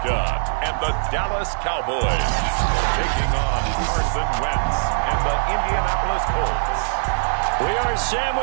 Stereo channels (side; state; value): left; silent; digital silence